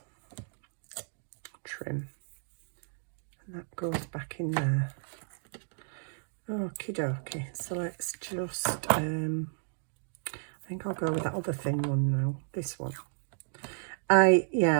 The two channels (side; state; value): left; silent; digital silence